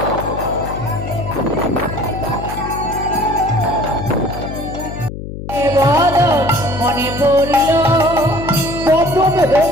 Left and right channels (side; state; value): left; noise; hum, 9 dB below the sound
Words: মনে পড়িল বদন